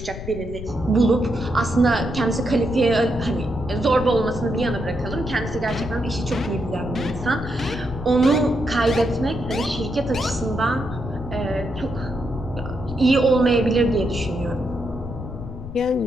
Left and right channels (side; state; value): left; noise; rumble, 10 dB below the sound